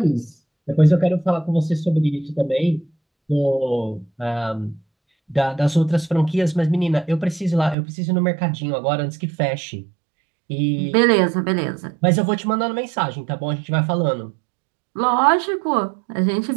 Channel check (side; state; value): left; drops out; at 7.8 s